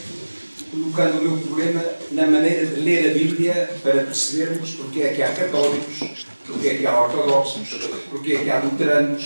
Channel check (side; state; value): both; inverted; correlation -1.00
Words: colocando o meu problema na maneira de ler a Bíblia para percebermos porque é que há católicos, porque é que há ortodoxos, porque é que há